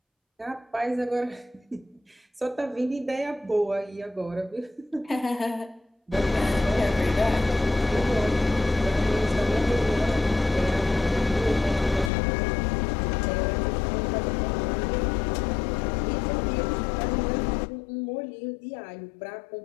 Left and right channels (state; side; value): drops out; right; at 12.1 s